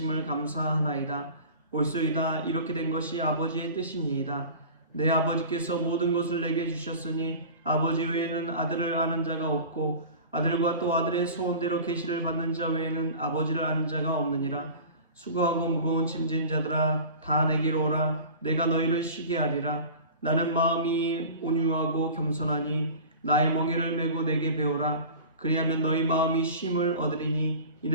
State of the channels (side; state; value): both; inverted; correlation -0.38